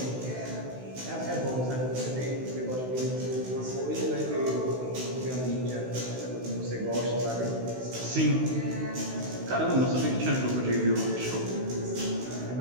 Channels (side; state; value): left; late; 16 ms